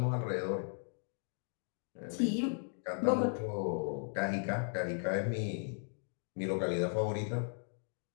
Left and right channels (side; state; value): right; silent; 53 dB below the other